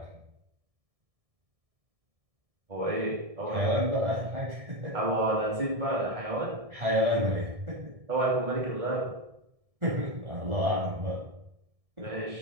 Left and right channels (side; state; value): left; late; 1.7 ms